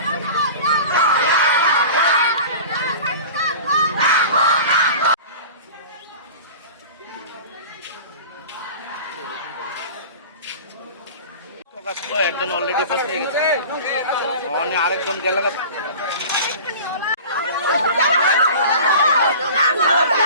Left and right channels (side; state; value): both; inverted; correlation -0.37